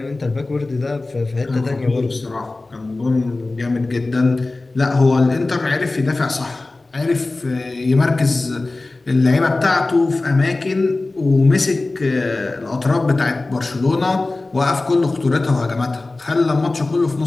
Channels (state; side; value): quieter; right; 3.2 dB